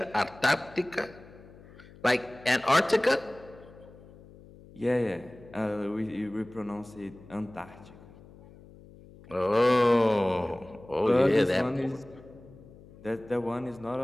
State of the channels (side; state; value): left; noise; hum, 21 dB below the sound